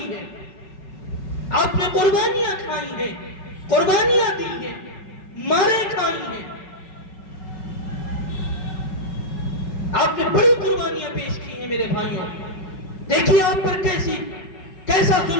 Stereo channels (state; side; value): late; right; 5.3 ms